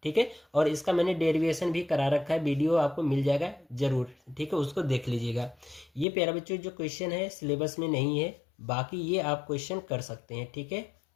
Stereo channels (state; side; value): drops out; right; at 6.1 s